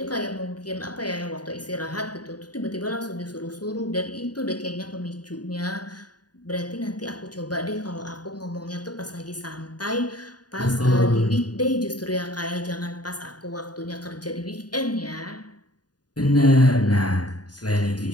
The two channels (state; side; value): late; right; 0.69 ms